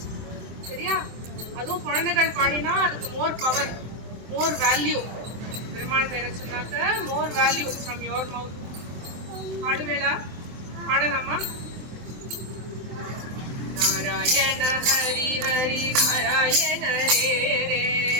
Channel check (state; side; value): late; left; 23 ms